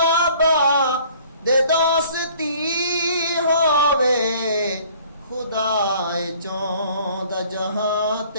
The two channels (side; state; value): both; inverted; correlation -0.54